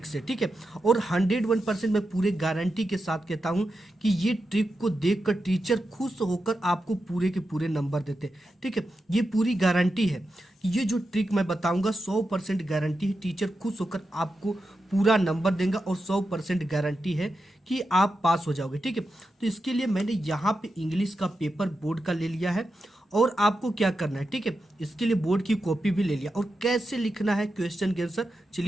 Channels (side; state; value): both; normal; correlation 0.88